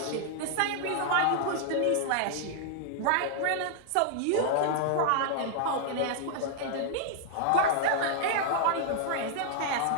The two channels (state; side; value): different; both; correlation -0.01